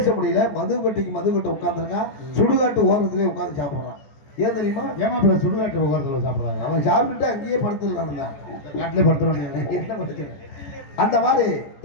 முடியல. மது கட்டு உட்காந்துருக்கான், சுடுகாட்டு ஓரத்திலே உட்காந்து சாப்பிட்றான். ஏன் தெரியுமா? ஏமாப்பிள்ள சுடுகாட்டு ஓரத்தில் சாப்பிட்றாங்க. அவன் சாப்பிட்டுட்டு அங்கேயே படுத்துடலாம் தான், நாட்டிலே படுத்துறாங்க. என்ன படுத்து அந்த மாதிரி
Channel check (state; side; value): late; right; 15 ms